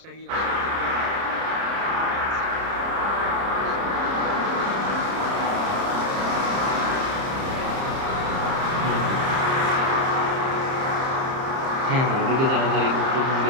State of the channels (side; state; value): left; late; 30 ms